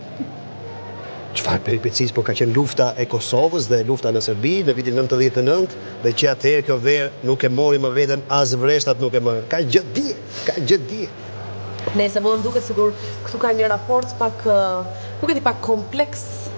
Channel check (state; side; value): inverted; both; correlation -1.00